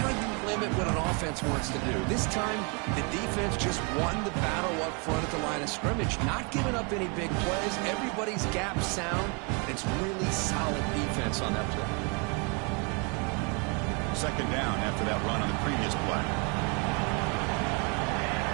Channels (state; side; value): quieter; left; 34.0 dB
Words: you limit what an offense wants to do. This time, the defense just won the battle up front at the line of scrimmage, not giving up any big plays. Everybody's gap sound. It's really solid defense on that play. Second down after that run on the previous play.